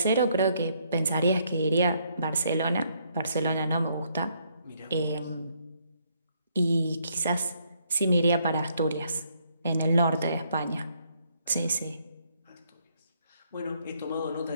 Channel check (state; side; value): inverted; both; correlation -0.71